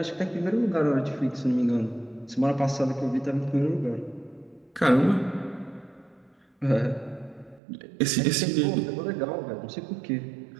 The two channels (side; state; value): left; drops out; at 7.6 s